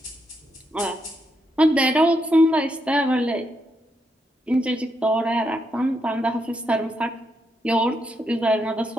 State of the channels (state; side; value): normal; both; correlation 0.80